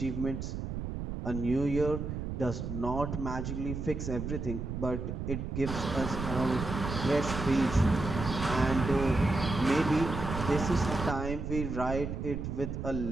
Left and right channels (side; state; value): right; noise; rumble, 5 dB below the sound